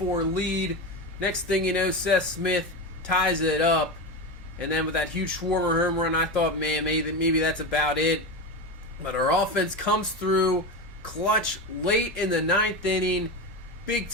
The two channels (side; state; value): both; normal; correlation 0.20